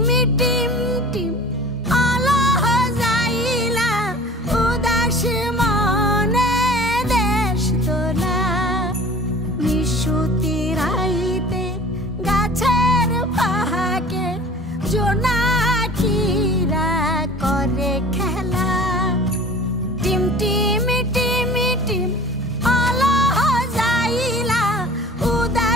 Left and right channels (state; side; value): normal; both; correlation 0.43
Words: টিম টিম আলো যাইলা উদাস মনে দেশ তোলা নিশুতি রাইতে গাছের ফাঁকে জোনাকিরা করে খেলা টিম টিমি টিমি টিম আলো যাইলা